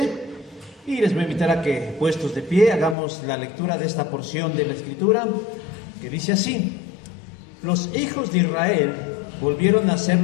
y les voy a invitar a que, puestos de pie, hagamos la lectura de esta porción de la Escritura, que dice así: Los hijos de Israel volvieron a hacer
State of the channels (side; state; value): right; drops out; at 3.0 s